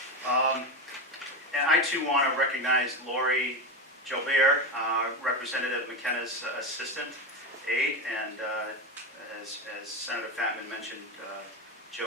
And I too want to recognize Lori Jobert, Representative McKenna's assistant aide, and as Senator Fatman mentioned,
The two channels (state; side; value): normal; both; correlation 0.16